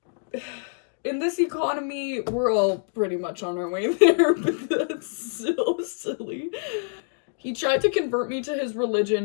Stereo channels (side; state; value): right; silent; digital silence